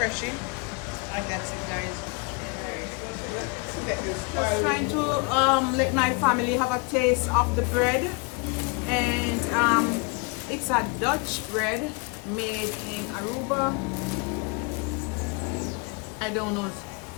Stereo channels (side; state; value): right; quieter; 30.9 dB